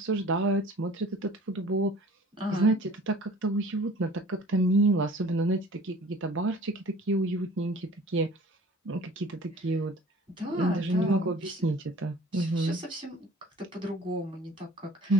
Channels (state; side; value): normal; both; correlation 0.47